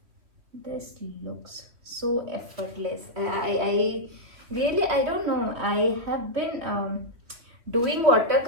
this looks so effortless. I really, I don't know, I have been doing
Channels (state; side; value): late; left; 3.1 ms